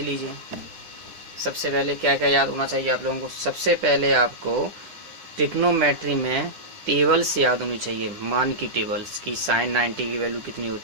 सबसे पहले क्या क्या याद होना चाहिए आप लोगों को। सबसे पहले आपको ट्रिग्नोमेट्री में टेबल्स याद होनी चाहिए, मान की टेबल्स की। साइन 90 की वैल्यू कितनी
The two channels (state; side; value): late; left; 10 ms